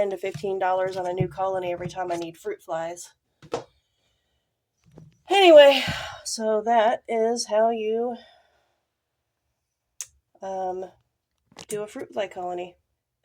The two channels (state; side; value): identical; both; correlation 1.00